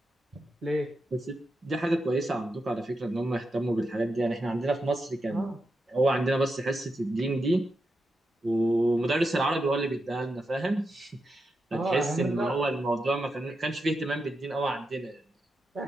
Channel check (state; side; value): normal; both; correlation 0.87